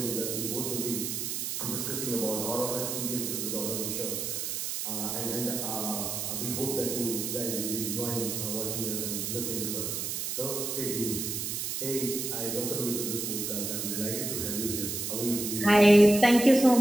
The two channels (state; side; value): noise; right; hiss, 3 dB below the sound